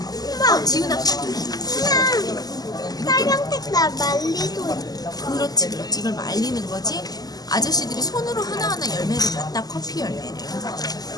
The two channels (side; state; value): right; late; 0.18 ms